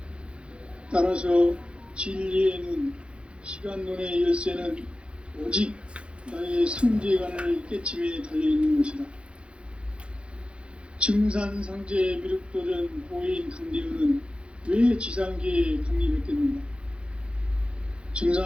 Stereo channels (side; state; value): left; late; 0.058 ms